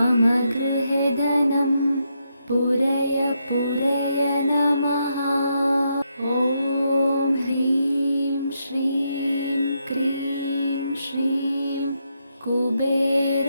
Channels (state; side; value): inverted; both; correlation -0.80